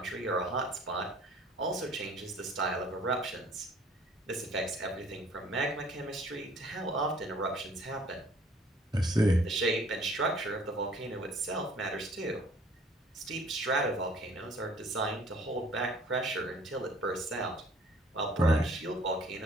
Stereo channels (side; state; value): both; normal; correlation 0.55